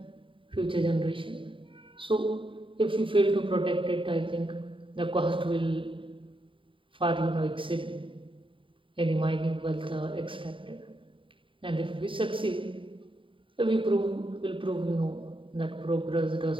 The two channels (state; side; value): late; left; 0.25 ms